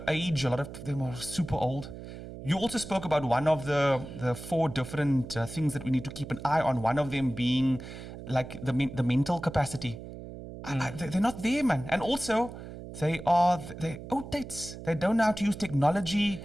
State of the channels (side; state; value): right; noise; hum, 12 dB below the sound